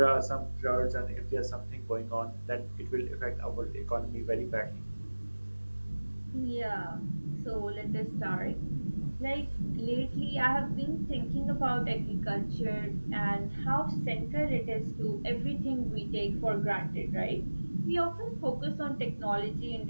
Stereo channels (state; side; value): inverted; both; correlation -1.00